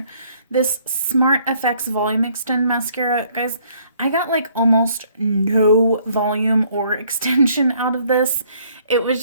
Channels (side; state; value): both; inverted; correlation -0.64